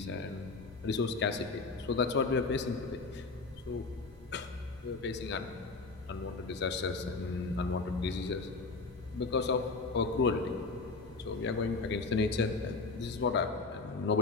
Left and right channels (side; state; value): right; quieter; 3.9 dB